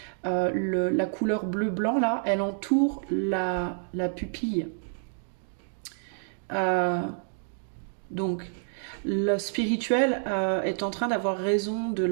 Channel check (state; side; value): silent; left; digital silence